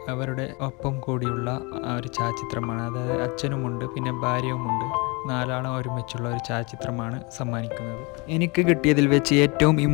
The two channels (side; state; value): right; quieter; 28.4 dB